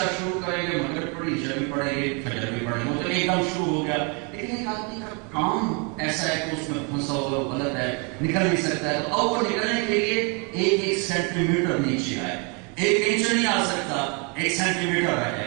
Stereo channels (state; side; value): quieter; left; 33.9 dB